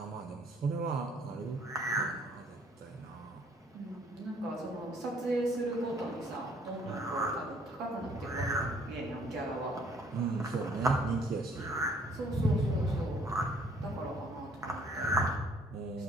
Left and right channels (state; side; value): normal; both; correlation 0.61